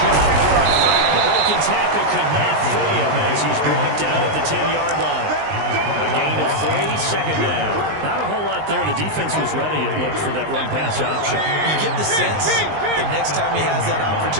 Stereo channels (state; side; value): late; left; 19 ms